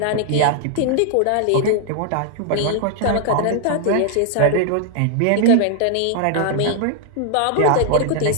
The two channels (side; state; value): both; different; correlation 0.00